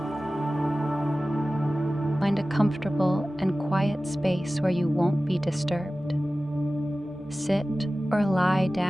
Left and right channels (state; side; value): normal; both; correlation 0.96